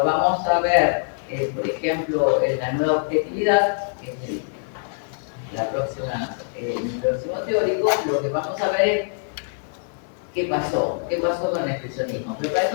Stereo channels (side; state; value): right; silent; 63 dB below the other